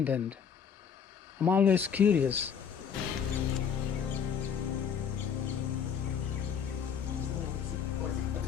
I'm always curious.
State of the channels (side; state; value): right; quieter; 7.4 dB